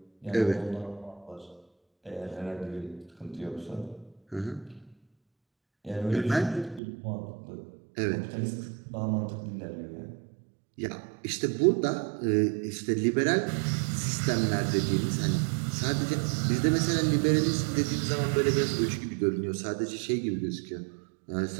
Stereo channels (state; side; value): drops out; left; at 6.8 s